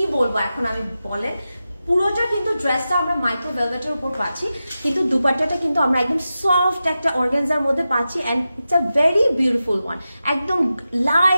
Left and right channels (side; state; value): both; inverted; correlation -0.92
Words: বলবো এখন আমি বলেন, পুরোটা কিন্তু ড্রেসটা আমরা মাইক্রো ভেলভেটের উপর পাচ্ছি, কিন্তু দুপাট্টাটা কিন্তু আমরা একদম সফট একটা অর্গানজার মধ্যে পাচ্ছি। And it's a very beautiful one, একদম